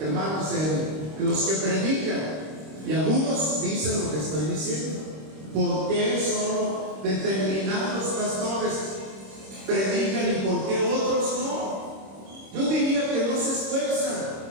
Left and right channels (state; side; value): late; left; 26 ms